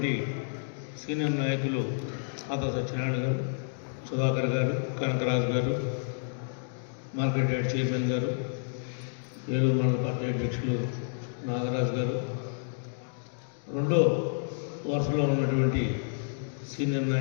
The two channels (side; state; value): right; silent; digital silence